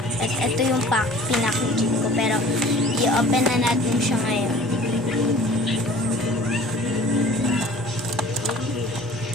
At ito yung pinakijing ko. Pero, i-open na natin siya ngayon.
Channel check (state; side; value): normal; both; correlation 0.47